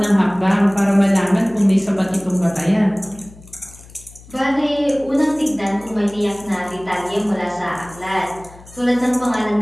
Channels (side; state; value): left; noise; hum, 22 dB below the sound